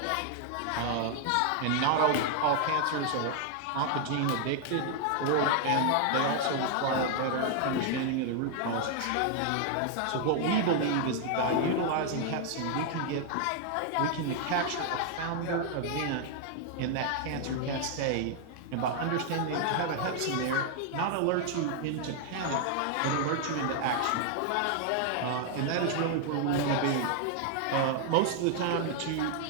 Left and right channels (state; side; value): different; both; correlation 0.00